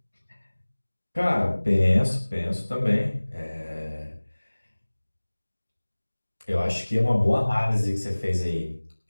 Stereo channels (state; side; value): inverted; both; correlation -1.00